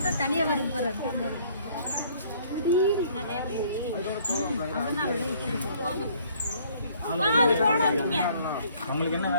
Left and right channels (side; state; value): both; inverted; correlation -0.60